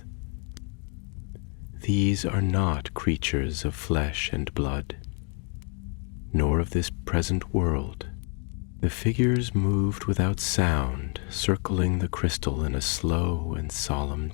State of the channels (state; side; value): quieter; right; 38.5 dB